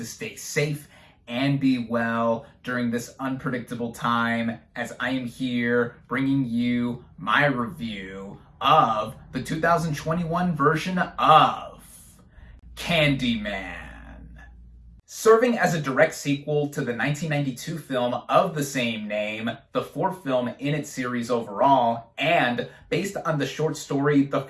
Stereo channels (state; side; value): identical; both; correlation 1.00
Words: stay safe and be well during this unpredictable time, as I am here bringing you my review of the 2021 version of Candyman. Serving as a direct sequel to the 1992 film of the same name, the fourth film in its series overall, and based on the short story The